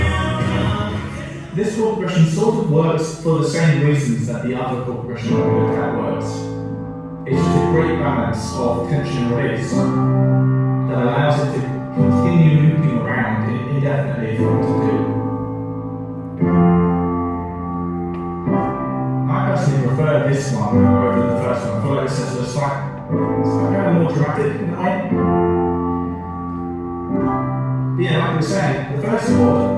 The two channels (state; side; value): identical; both; correlation 1.00